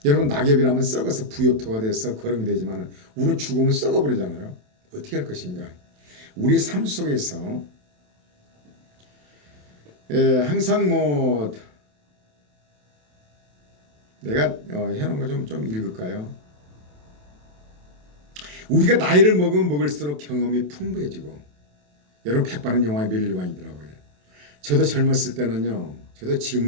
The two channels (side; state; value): left; late; 27 ms